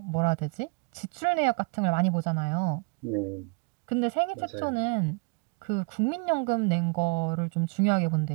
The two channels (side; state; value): left; quieter; 34.7 dB